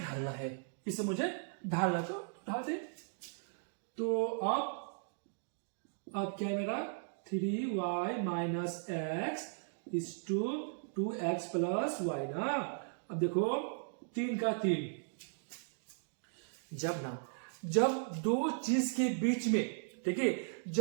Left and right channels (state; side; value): silent; left; digital silence